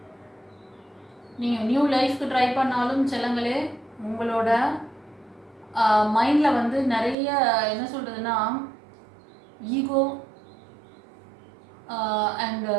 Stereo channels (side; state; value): left; drops out; at 7.2 s